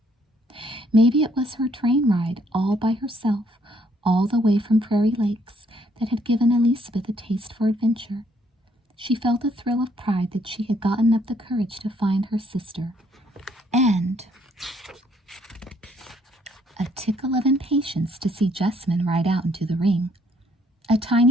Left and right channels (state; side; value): normal; both; correlation 0.67